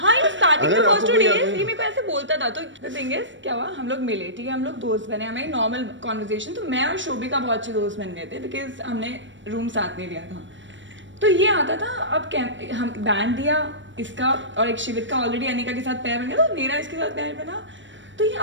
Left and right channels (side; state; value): left; late; 0.55 ms